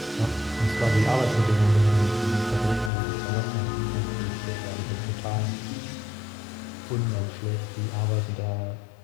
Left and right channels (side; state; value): right; drops out; at 2.9 s